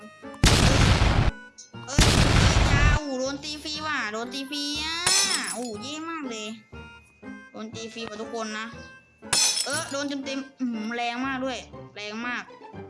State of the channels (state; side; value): identical; both; correlation 1.00